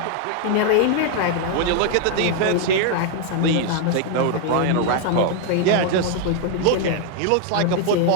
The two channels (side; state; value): both; different; correlation 0.00